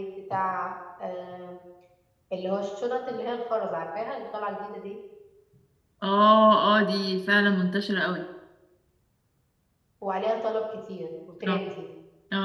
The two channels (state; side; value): identical; both; correlation 1.00